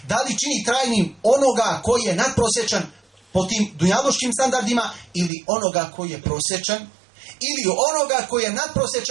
Da li čini trajnim onoga koji je nadprosječan po tim dunjalučkim standardima ili onoga koji je prosječan? Ili onoga koji je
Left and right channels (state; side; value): drops out; left; at 5.3 s